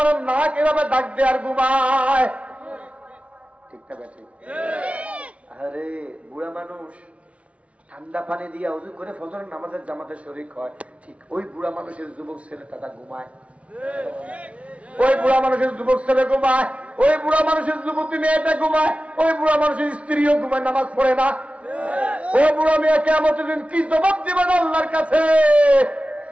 নাক এভাবে ডাক দেয় আর ঘুমায়, ঠিক না বেঠিক? আরে বুড়া মানুষ ঠান্ডা পানি দিয়ে ওযু করে ফজরের নামাজের জামাতে শরীক হয়, ঠিক ওই বুড়া মানুষের যুবক ছেলেটা ঘুমায়, ওই বুড়া মানুষের যুবক ছেলে ঘুমায়, ওই বুড়া মানুষের যুবতী মেয়েটা ঘুমায়, ওই বুড়া মানুষের স্ত্রীও ঘুমায়, নামাজ পড়ে না। ওই বুড়া মেয়ে কিয়ামতের দিন কি জবাব দিবেন আল্লাহর কাছে?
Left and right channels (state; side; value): late; left; 0.063 ms